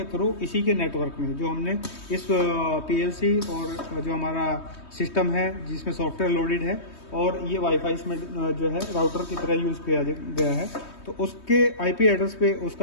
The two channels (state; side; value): late; right; 3.2 ms